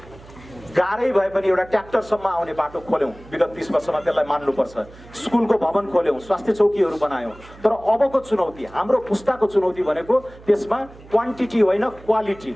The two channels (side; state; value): right; noise; hum, 21 dB below the sound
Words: गाह्रै भए पनि एउटा ट्र्याक्टरसम्म आउने बाटो खोल्यौँ। विगत 30 वर्षमा त्यसलाई मान्नुपर्छ। स्कुलको भवन खोल्यौँ, स्वास्थ्य चौकीहरू बनायौँ। तर अबको चुनौती, हाम्रो पुस्ताको चुनौती भनेको त्यसमा क्वान्टिटी होइन, क्वालिटी,